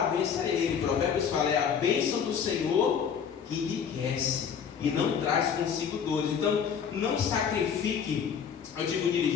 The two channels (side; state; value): right; quieter; 7.3 dB